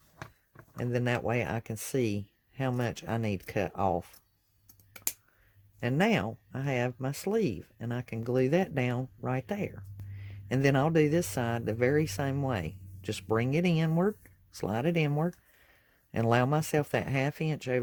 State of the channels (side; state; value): both; identical; correlation 1.00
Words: and then that way I can see how much I need cut off. And now I have my sleeve, and I can glue that down right there. And then I'll do this side the very same way. Just bring it inward, slide it inward, and allow myself that 1/2 inch